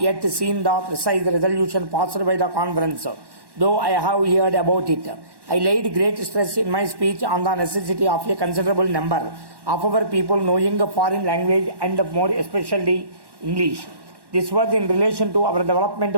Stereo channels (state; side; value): late; left; 1.1 ms